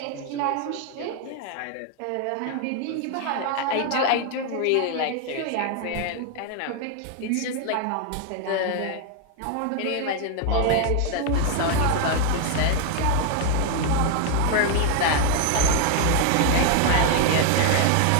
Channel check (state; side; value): different; both; correlation 0.00